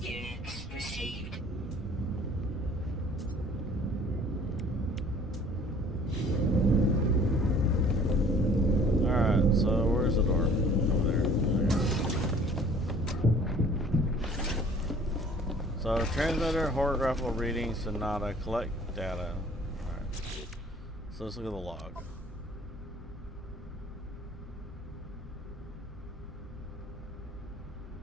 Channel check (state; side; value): normal; both; correlation 0.52